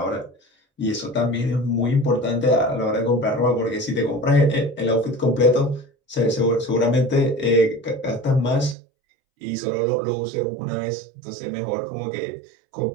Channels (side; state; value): left; drops out; at 8.8 s